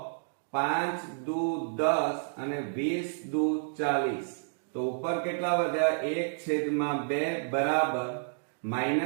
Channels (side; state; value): left; silent; digital silence